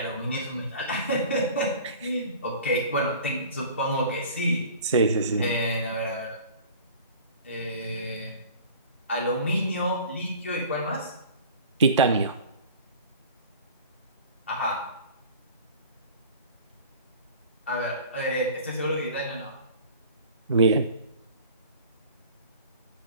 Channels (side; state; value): both; inverted; correlation -0.43